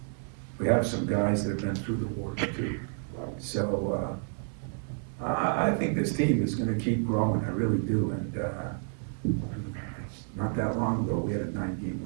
some guys that have been through the wars too. So I think this team is gonna keep growing, I really do, and not that long ago, we had a 9-game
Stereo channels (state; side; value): silent; left; 57 dB below the other